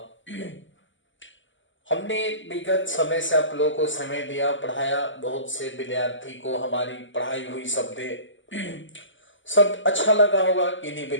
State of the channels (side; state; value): right; late; 0.55 ms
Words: हमने विगत समय से आप लोगों को समय दिया, पढ़ाया, बहुत से विद्यार्थी को हमारी पढ़ाई हुई शब्द सब अच्छा लगा होगा। किन्हीं